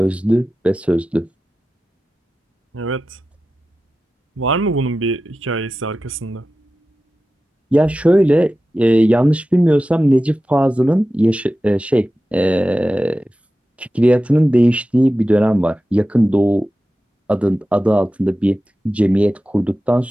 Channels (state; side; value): normal; both; correlation 0.94